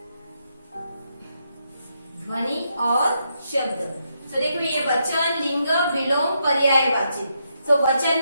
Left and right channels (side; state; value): both; inverted; correlation -0.80